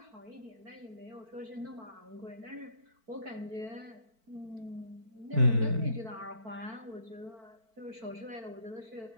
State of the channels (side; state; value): left; late; 4.5 ms